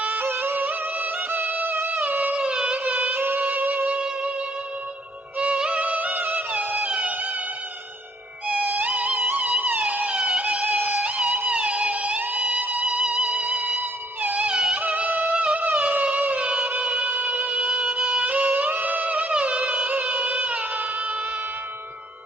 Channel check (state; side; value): normal; both; correlation 0.65